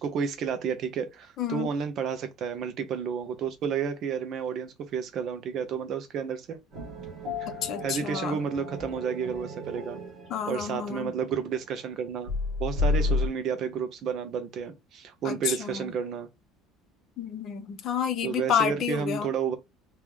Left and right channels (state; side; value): normal; both; correlation 0.46